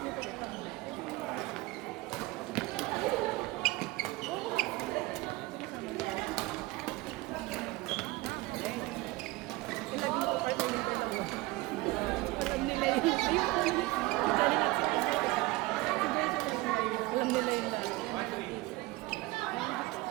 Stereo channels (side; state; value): left; quieter; 20.8 dB